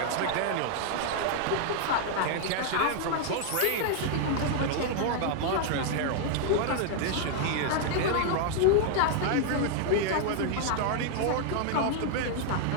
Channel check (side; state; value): both; different; correlation 0.00